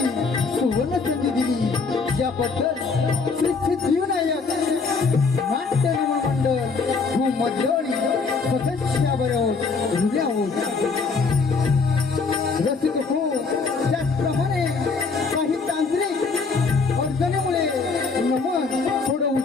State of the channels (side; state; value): right; quieter; 4.5 dB